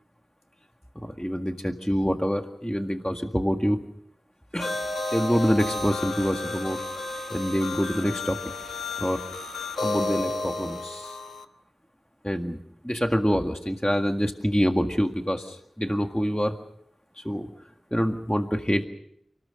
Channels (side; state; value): both; normal; correlation 0.96